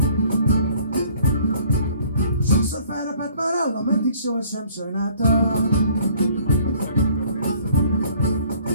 Sokszor felrepett már állam, eddig sohasem sajnáltam.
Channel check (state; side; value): inverted; both; correlation -0.57